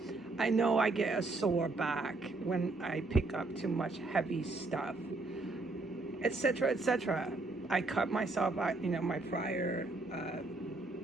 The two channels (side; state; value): left; quieter; 3.3 dB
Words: I know I get a sore back when I pick up too much heavy stuff, etc., etc. I cut myself out. My prior